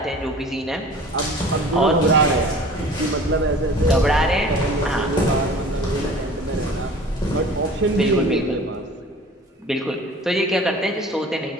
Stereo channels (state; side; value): normal; both; correlation 0.44